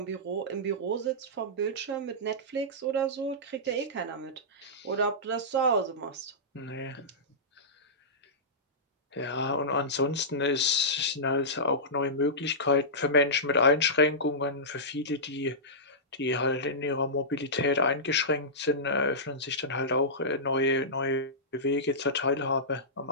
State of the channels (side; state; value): both; normal; correlation -0.15